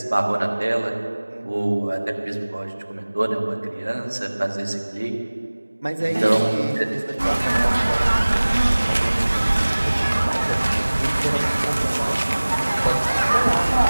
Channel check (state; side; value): inverted; both; correlation -1.00